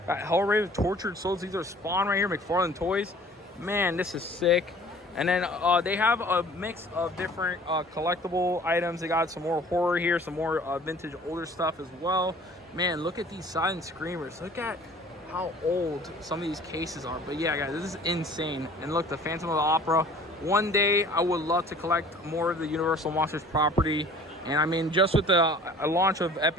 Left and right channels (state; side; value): normal; both; correlation 0.49